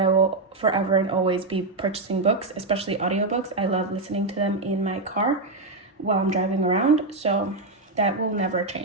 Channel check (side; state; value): left; quieter; 3.2 dB